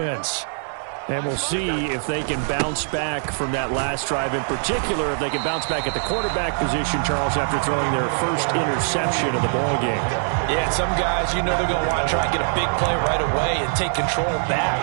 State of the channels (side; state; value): left; silent; digital silence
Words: And we'll see if they can bounce back from that last drive, in particular, if they can bounce back at the quarterback position, Charles, after throwing their first interception of the ball game. Yeah, some guys, they're going to want to try and get a big play right away and take control back.